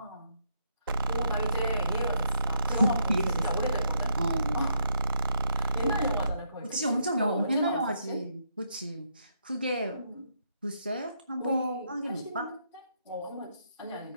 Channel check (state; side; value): inverted; both; correlation -0.75